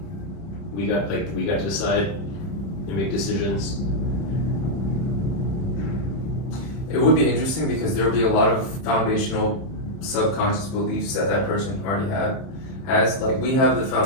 we got to decide and make decisions? It would be interesting because there would be a lot of foundational subconscious beliefs that person already has. Like we have the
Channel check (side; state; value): right; late; 31 ms